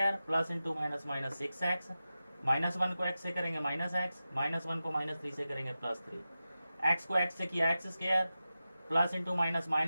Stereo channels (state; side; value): inverted; both; correlation -0.94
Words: plus into minus 6x, -1 को x से करेंगे -x, -1 को -3 से करेंगे +3, x को x से किया x square, plus into